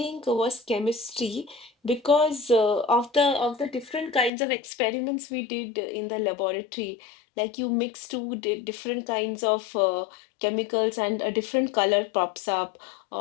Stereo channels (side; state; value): right; drops out; at 4.3 s